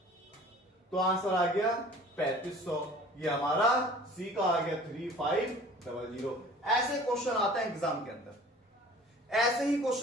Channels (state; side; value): normal; both; correlation 0.47